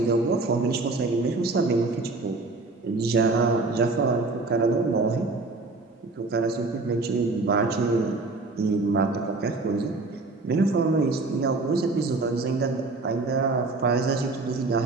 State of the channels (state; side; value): quieter; left; 3.4 dB